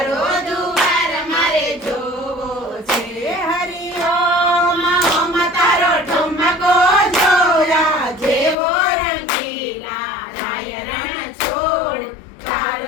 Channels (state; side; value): drops out; right; at 8.6 s